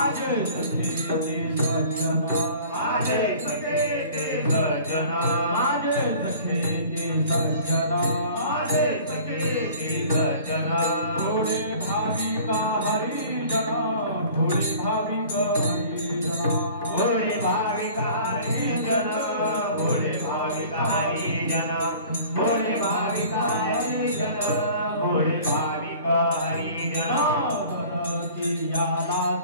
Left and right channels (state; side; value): inverted; both; correlation -0.47